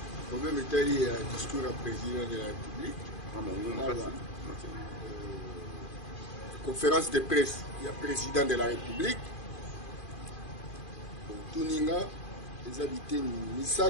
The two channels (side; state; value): right; late; 2.4 ms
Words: problème Italie discours à président de la République. Conférence de presse, il y a président de la République. Tuninga, les habités